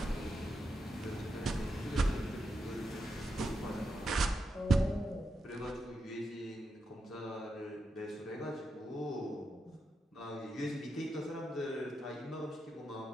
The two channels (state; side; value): normal; both; correlation 0.86